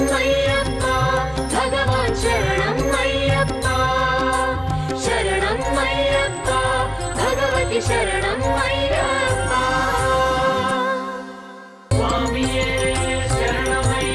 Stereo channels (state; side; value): identical; both; correlation 1.00